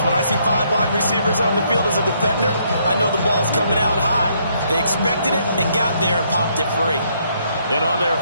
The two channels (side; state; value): both; inverted; correlation -0.71